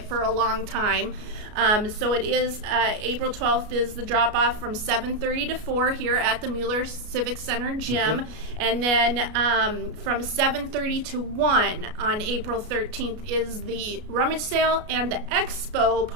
for a long time. So it is April 12th is the drop-off from 7:30 to 4 here at the Mueller Civic Center gym. And then from 7:30 to 1 on April 13th is the rummage sale and the expo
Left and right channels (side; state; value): left; late; 33 ms